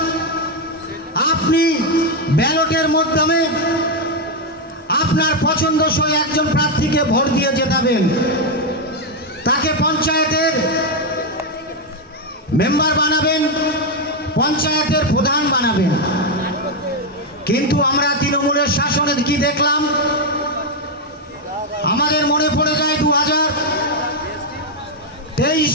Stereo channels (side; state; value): both; normal; correlation 0.04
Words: আপনি ব্যালটের মাধ্যমে আপনার পছন্দসই একজন প্রার্থীকে ভোট দিয়ে জেতাবেন, তাকে পঞ্চায়েতের মেম্বার বানাবেন, পঞ্চায়েতের প্রধান বানাবেন। কিন্তু আমরা তৃণমূলের শাসনে কি দেখলাম? আমাদের মনে পড়ে যায় 2023